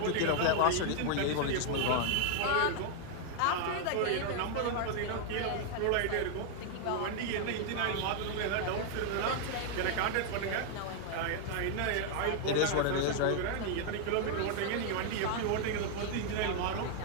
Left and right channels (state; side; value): different; both; correlation 0.00